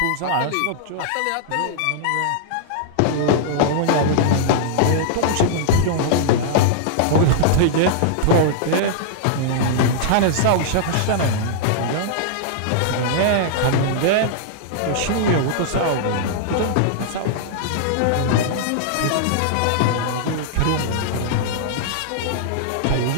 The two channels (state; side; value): different; both; correlation -0.01